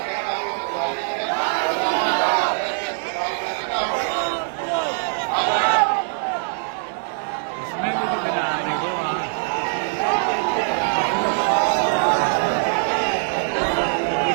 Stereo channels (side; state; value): left; silent; digital silence